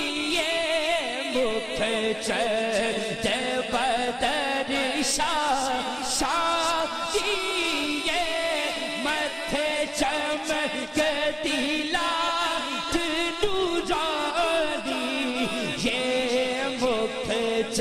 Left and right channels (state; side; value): identical; both; correlation 1.00